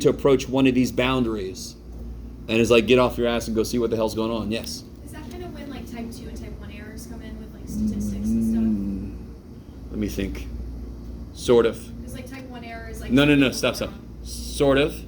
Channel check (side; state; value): both; identical; correlation 1.00